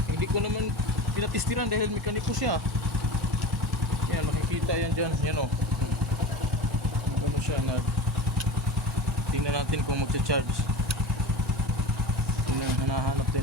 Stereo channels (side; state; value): both; normal; correlation 0.31